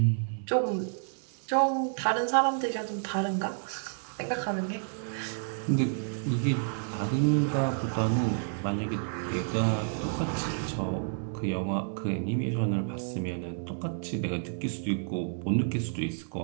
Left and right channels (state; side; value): silent; left; 58 dB below the other